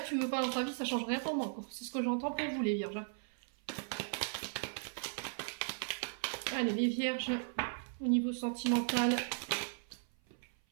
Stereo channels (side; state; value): left; silent; 53 dB below the other